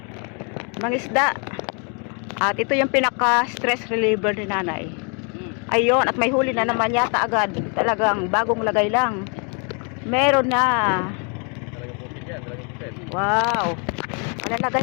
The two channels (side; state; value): right; quieter; 36.8 dB